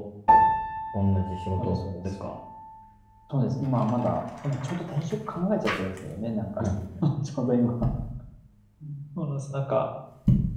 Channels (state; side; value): identical; both; correlation 1.00